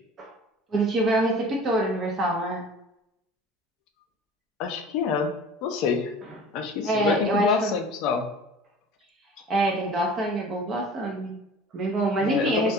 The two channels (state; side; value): normal; both; correlation 0.42